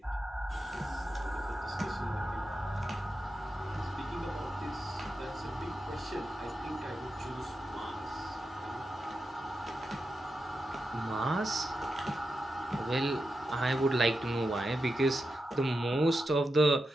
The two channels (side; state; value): both; normal; correlation 0.89